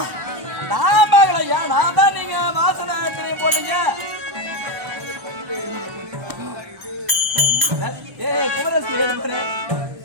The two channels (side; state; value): left; late; 1.0 ms